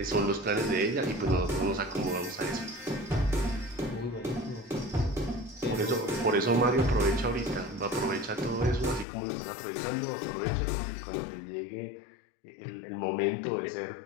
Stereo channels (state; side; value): drops out; right; at 9.1 s